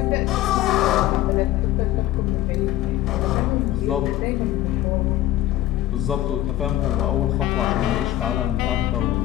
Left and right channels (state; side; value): quieter; right; 14.1 dB